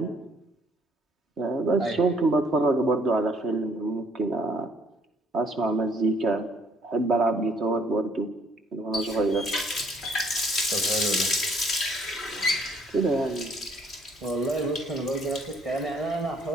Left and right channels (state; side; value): normal; both; correlation 0.63